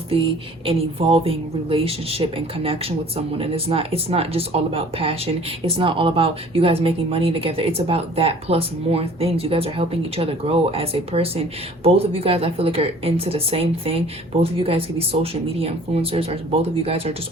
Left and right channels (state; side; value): normal; both; correlation 0.50